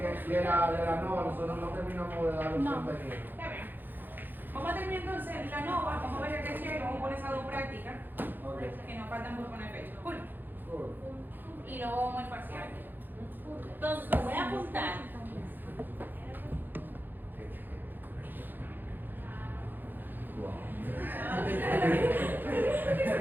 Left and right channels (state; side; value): late; left; 0.090 ms